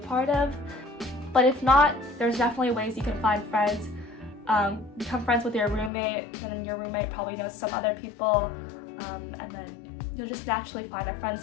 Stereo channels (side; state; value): right; drops out; at 5.9 s